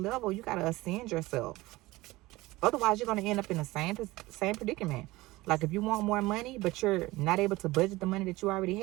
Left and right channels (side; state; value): left; quieter; 19.6 dB